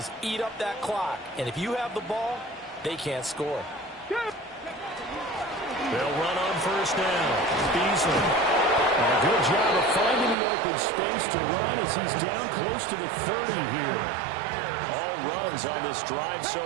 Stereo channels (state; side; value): drops out; left; at 10.4 s